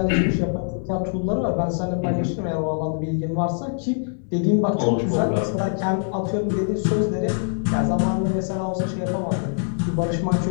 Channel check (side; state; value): right; silent; 62 dB below the other